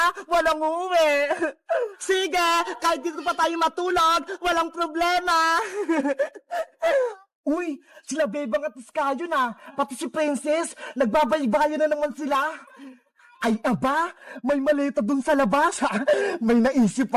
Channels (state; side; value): identical; both; correlation 1.00